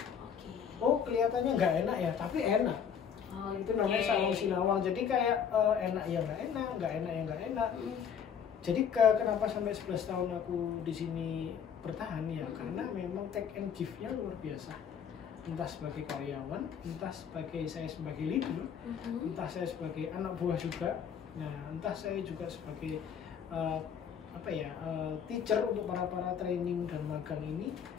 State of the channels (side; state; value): right; quieter; 7.7 dB